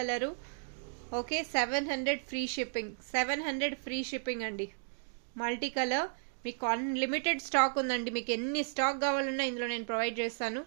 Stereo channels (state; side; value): silent; left; digital silence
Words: okay 700 free shipping. 700 free shipping అండి. మల్టీ కలర్ మీకు అన్లిమిటెడ్ స్టాక్ ఉందండి. మీకు ఎన్ని స్టాక్ కావాలన్నా ఇందులో నేను ప్రొవైడ్ చేస్తాను.